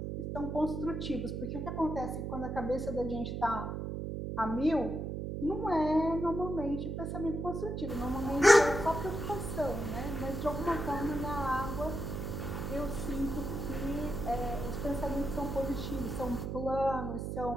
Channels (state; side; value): noise; right; hum, 4 dB below the sound